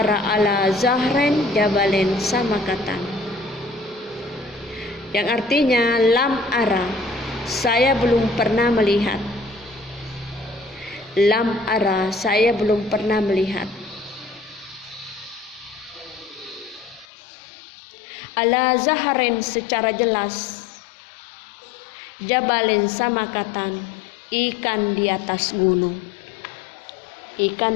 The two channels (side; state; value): right; drops out; at 17.1 s